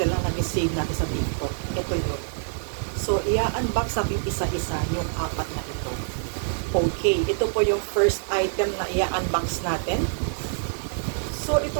na nag-save natin sa TikTok. Ito yun. So i-unbox natin isa-isa yung apat na ito. Okay, ito po yung first item na i-unbox natin. So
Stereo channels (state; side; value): silent; left; digital silence